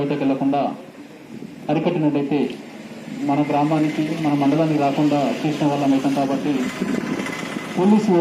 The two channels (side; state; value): both; identical; correlation 1.00